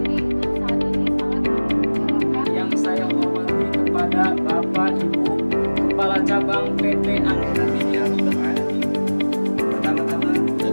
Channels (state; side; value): inverted; both; correlation -1.00